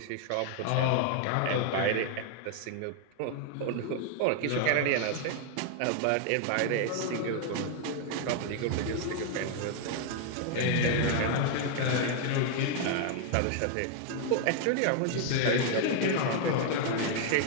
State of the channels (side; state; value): both; different; correlation 0.00